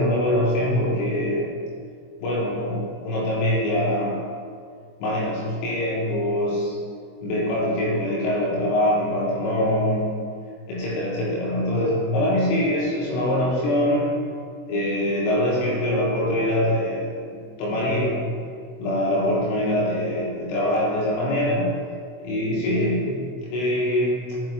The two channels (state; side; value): late; right; 24 ms